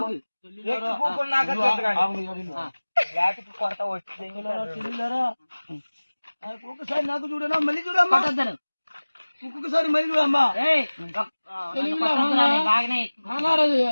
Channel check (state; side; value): inverted; both; correlation -1.00